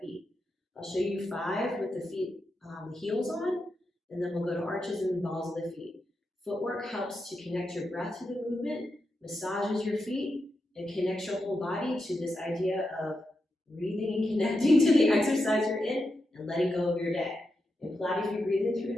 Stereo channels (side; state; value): both; normal; correlation 0.87